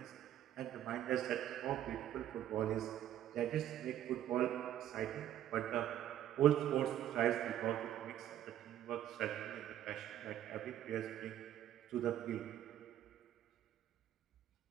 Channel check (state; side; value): quieter; left; 11.6 dB